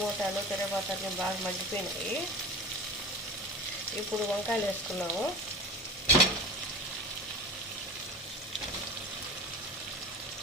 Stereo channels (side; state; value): both; normal; correlation 0.35